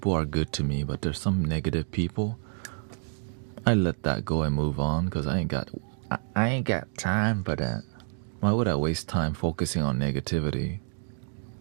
are good to me, but there's some negative people. I let that go and move on because I ain't got time for that. Why would I waste time focusing on negativity?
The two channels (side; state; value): left; silent; digital silence